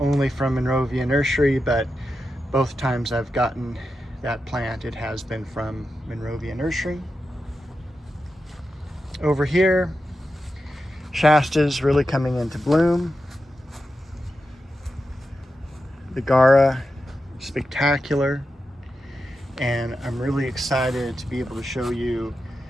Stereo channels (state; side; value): normal; both; correlation 0.90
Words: from Monrovia Nursery, but both times I've gotten that plant, it has been from Monrovia Nursery. Over here, Shasta's really coming into bloom. The Gara, spectacular. And I'm really excited to be able to show you